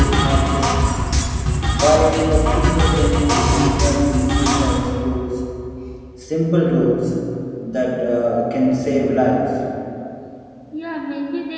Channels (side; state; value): both; identical; correlation 1.00